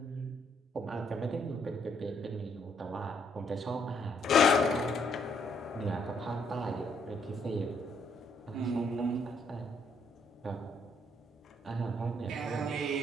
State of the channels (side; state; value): both; normal; correlation 0.70